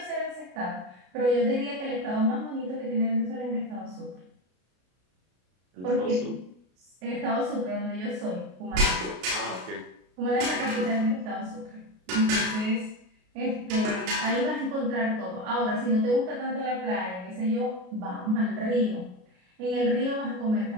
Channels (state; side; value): late; left; 33 ms